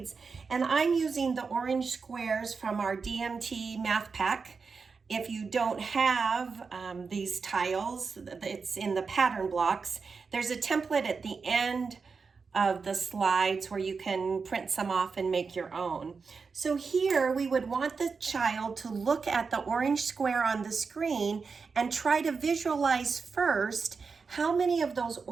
and I'm using the orange squares from our DMT math pack. If you don't have these tiles, it's in the pattern blocks. There's a template at the end of the slides where you can print some off and make your own. So here we would want the child to look at the orange square on the screen and try to visualize first how many of those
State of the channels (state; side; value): quieter; left; 5.0 dB